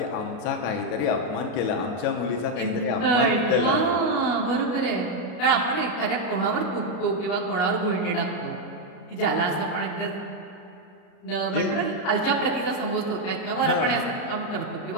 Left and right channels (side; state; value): right; late; 33 ms